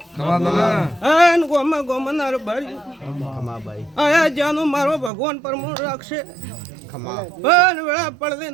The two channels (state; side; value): drops out; left; at 5.1 s